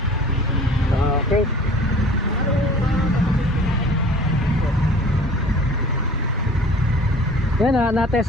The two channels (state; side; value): normal; both; correlation 0.47